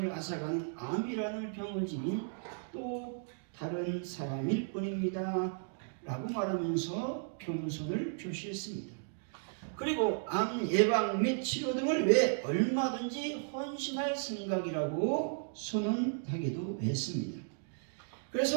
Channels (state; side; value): silent; left; digital silence